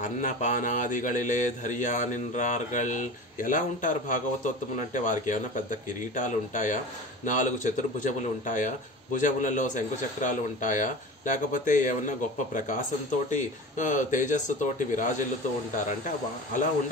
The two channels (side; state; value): both; normal; correlation 0.34